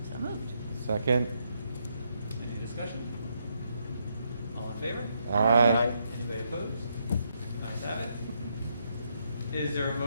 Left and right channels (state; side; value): inverted; both; correlation -0.78